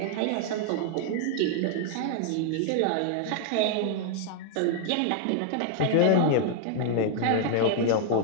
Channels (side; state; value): both; different; correlation -0.01